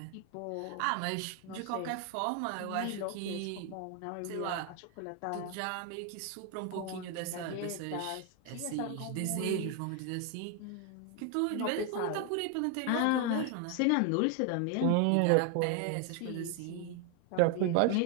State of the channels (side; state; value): both; different; correlation 0.01